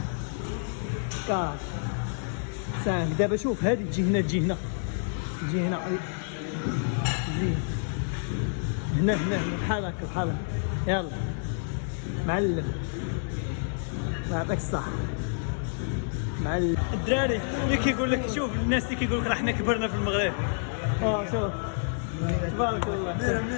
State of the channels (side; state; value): right; silent; digital silence